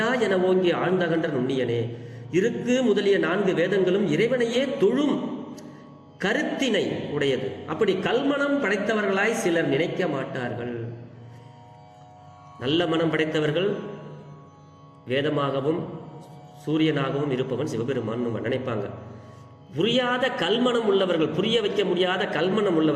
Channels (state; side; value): identical; both; correlation 1.00